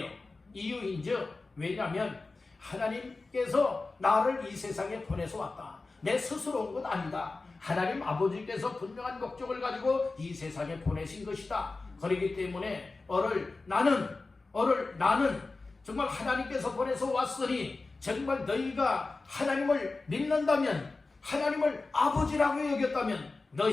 이유인즉 왜냐하면 하나님께서 나를 이 세상에 보내서 왔다. 내 스스로 온 건 아니다. 하나님 아버지께서 분명한 목적을 가지고 이 세상에 보내신 것이다. 그렇기 때문에 나는 정말 하나님께서 보내서 왔으니 정말 너희가 하나님을 믿는다면, 하나님을 아버지라고 여겼다면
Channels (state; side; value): quieter; right; 3.6 dB